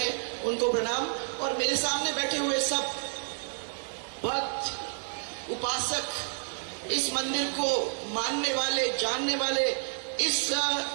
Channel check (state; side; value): silent; left; digital silence